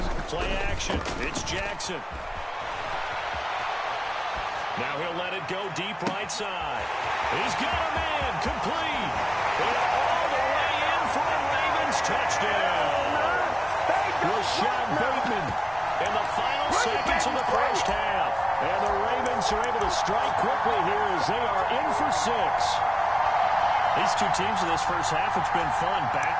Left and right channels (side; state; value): both; identical; correlation 1.00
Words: Play action. It's Jackson. Now he'll let it go deep right side. He's got a man. Complete. And all the way in for a Ravens touchdown. Rashad Bateman in the final seconds of the 1st half. And the Ravens are able to strike quickly here as they are in for 6. These 2 teams in this 1st half, it's been fun.